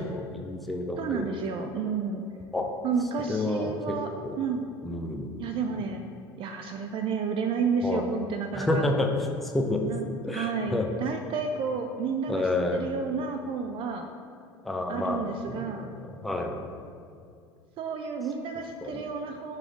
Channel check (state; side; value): normal; both; correlation 0.48